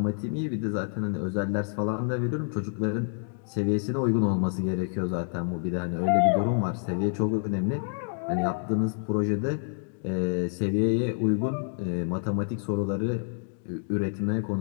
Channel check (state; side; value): silent; right; 58 dB below the other